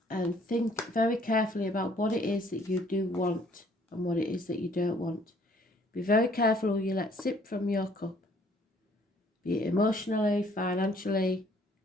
think very carefully about what it is that you do want and what it is that you don't want. Be very careful who you let sip from your cup, be it emotionally, financially,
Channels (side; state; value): both; normal; correlation 0.60